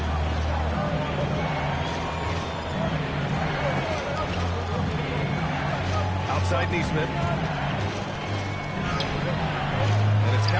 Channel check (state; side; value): identical; both; correlation 1.00